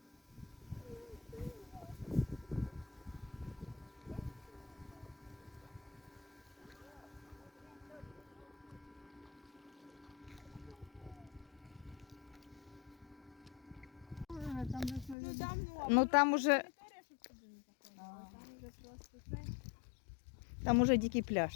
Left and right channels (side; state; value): right; drops out; at 15.2 s